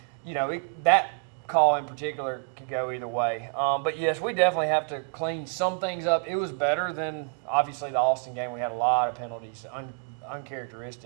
that call in particular could go either way. But, yes, we definitely have to clean some things up. It was better than, obviously, the Austin game. We had a lot of penalties,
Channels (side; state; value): left; quieter; 38.6 dB